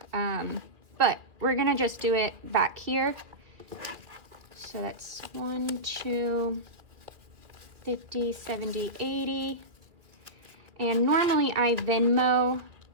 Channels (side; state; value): left; late; 2.6 ms